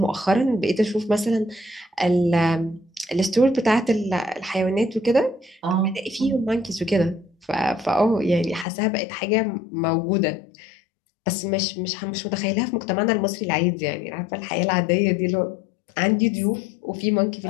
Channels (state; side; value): drops out; right; at 8.7 s